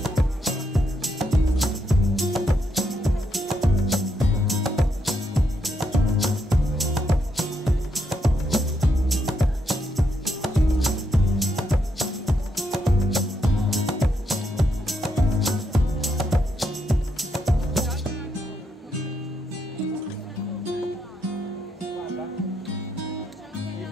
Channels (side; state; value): both; normal; correlation 0.79